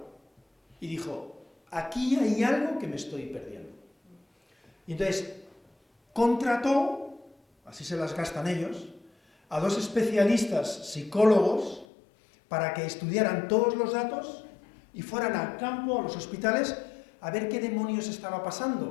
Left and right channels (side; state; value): right; drops out; at 11.9 s